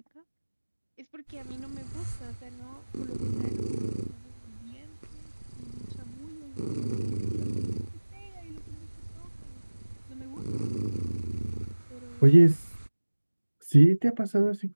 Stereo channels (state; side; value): inverted; both; correlation -1.00